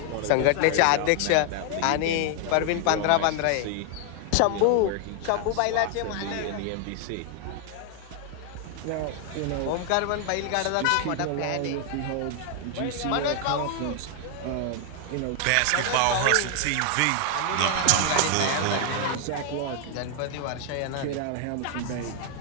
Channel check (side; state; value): both; different; correlation 0.00